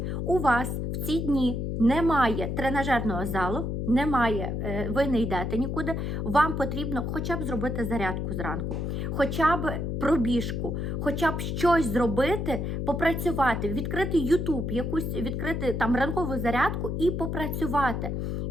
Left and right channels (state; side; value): noise; left; hum, 2 dB below the sound